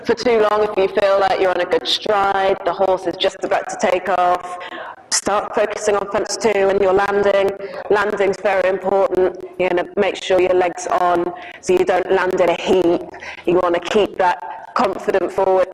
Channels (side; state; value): both; identical; correlation 1.00